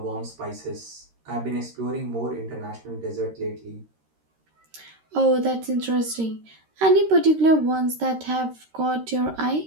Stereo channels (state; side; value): late; left; 13 ms